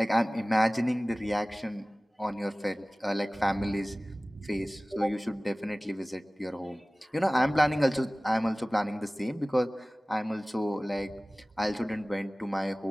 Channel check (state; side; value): normal; both; correlation 0.98